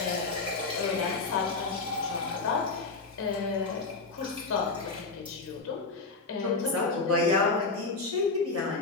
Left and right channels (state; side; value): quieter; right; 3.9 dB